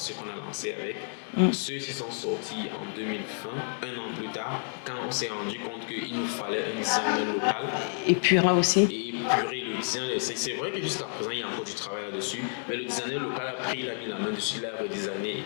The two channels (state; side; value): silent; right; 58 dB below the other